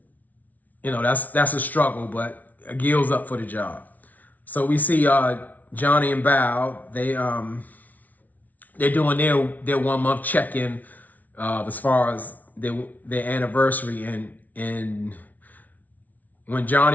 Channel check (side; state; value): right; late; 0.076 ms